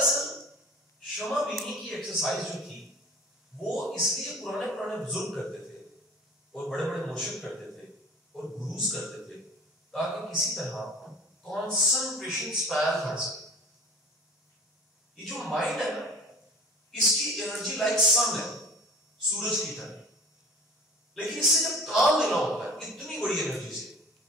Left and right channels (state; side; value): normal; both; correlation 0.42